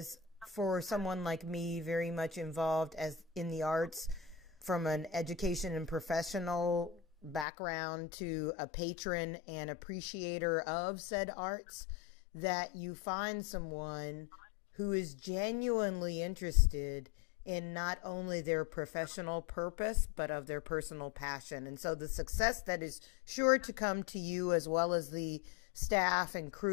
for someone like me, very much involved as in the arts, from an education and professional background to a patron and appreciator of said arts, that you find someone who is genuinely interested in not only their professional purpose, but of their personal passion. And so the success that is sure to come to you, as well as the staff and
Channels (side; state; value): right; drops out; at 7.5 s